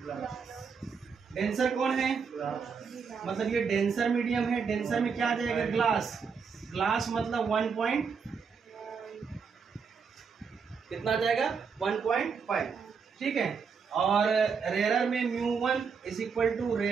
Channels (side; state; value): left; quieter; 5.8 dB